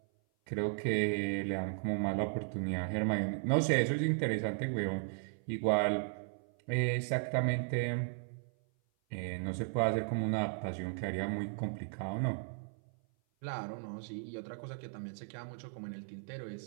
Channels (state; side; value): silent; left; 54 dB below the other